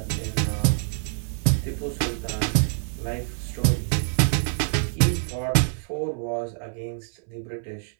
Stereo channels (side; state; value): left; silent; 61 dB below the other